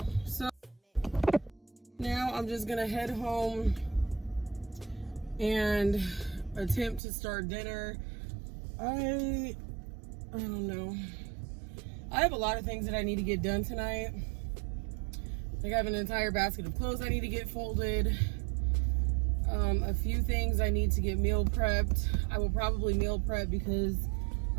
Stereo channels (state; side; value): drops out; left; at 7.0 s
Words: so now I'm just gonna head home and attempt to start dinner. I don't know. I have a lot of things that I need to get done tonight. Like I have an entire basket of clothes I need to get folded. A few things I need to get meal prepped. I will probably meal prep because